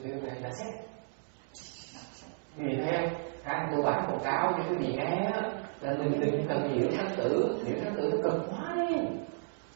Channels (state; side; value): silent; left; digital silence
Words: Pure Land. That's it. Quý vị thấy không? Cái tôi bán quảng cáo cho quý vị nghe là mình đừng cần liễu sanh tử. Liễu sanh tử nó cực quá đi.